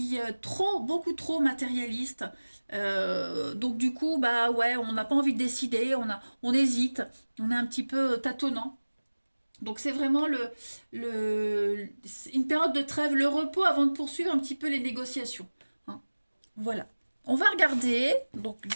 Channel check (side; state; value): both; inverted; correlation -1.00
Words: est beaucoup trop matérialiste. Donc du coup, ouais, on n'a pas envie de décider, on hésite, on est un petit peu tâtonnant. Donc c'est vraiment une période de trêve, le repos avant de poursuivre un petit peu les négociations. Voilà. On va regarder, donc